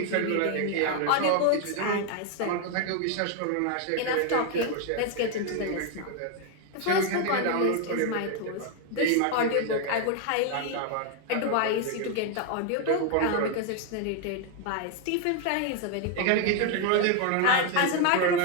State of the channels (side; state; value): both; different; correlation 0.01